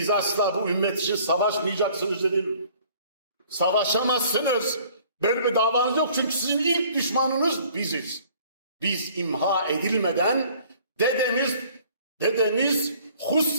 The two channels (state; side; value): inverted; both; correlation -0.54